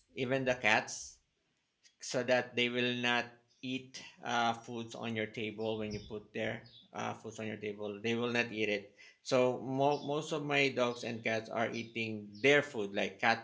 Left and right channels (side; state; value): both; identical; correlation 1.00